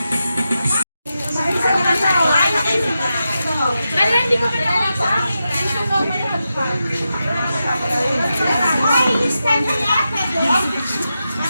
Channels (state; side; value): inverted; both; correlation -0.89